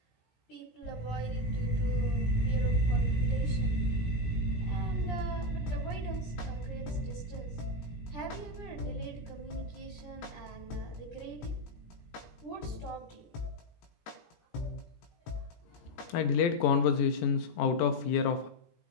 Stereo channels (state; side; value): late; right; 18 ms